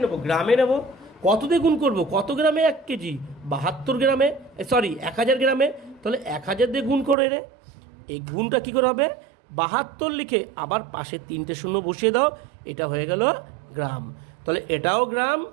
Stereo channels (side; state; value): left; drops out; at 7.2 s